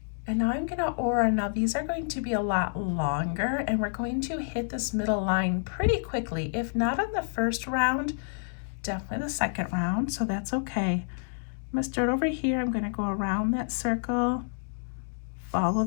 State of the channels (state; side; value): silent; right; digital silence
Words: And now I'm gonna aura. Now these are going to be a lot longer, and we're going to hit this middle line pretty quickly. If not on the first round, definitely the second round, so that's okay. I'm gonna start over here. I'm gonna go around that circle, follow